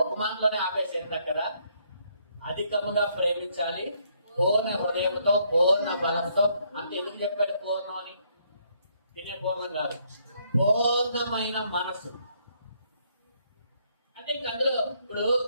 ఒక మాటలోనే ఆపేసేంట కదా, అధికముగా ప్రేమించాలి, పూర్ణ హృదయంతో పూర్ణ బలంతో. అంటే ఎందుకు చెప్పాడు పూర్ణం అని? తినే పూర్ణం కాదు, పూర్ణమైన మనసు. అంటే ఇంక అందులో ఇప్పుడు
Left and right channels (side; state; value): both; inverted; correlation -0.70